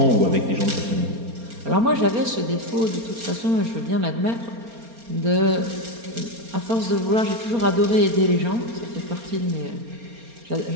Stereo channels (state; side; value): late; left; 4.3 ms